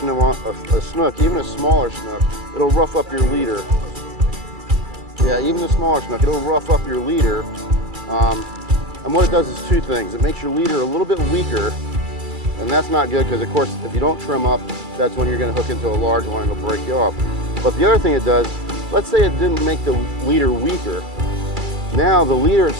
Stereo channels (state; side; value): late; left; 2.3 ms